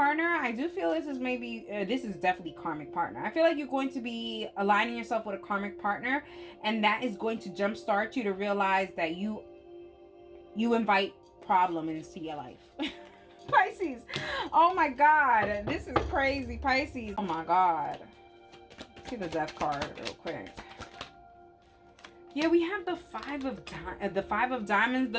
I do feel this is maybe, this is definitely karmic partner. I feel like you're going to be aligning yourself with a karmic partner, and that is going to jumpstart you to realize that you invite problem into your life. Pisces, oh my God, this is crazy, Pisces. Oh my God. See the Death card real quick. Yeah, we have the Five of Diamonds,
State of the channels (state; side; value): identical; both; correlation 1.00